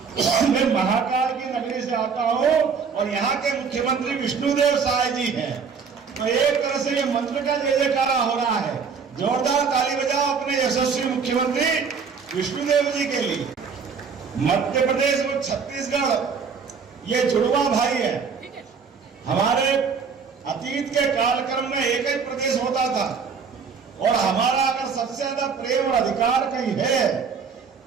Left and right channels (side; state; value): left; quieter; 5.8 dB